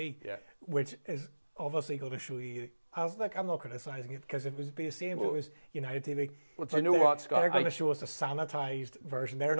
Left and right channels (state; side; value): inverted; both; correlation -1.00